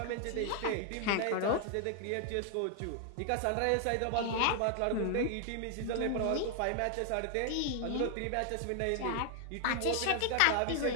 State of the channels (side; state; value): both; different; correlation 0.00